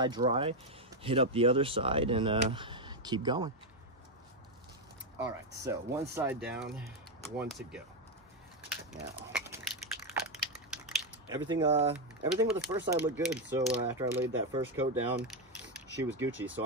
dry, hit up the other side, and keep going. All right, so one side down, one to go. Now, everything with the first side looked good. So after I laid that first coat down, she was Gucci. So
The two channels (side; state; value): both; normal; correlation 0.06